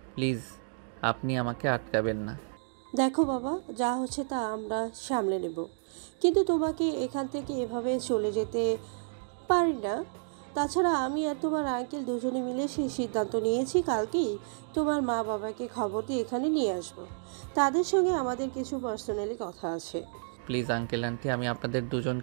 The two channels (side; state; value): left; silent; digital silence